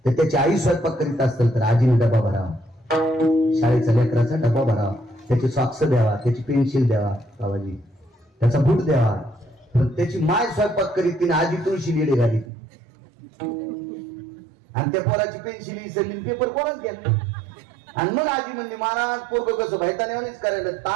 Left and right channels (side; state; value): left; drops out; at 12.5 s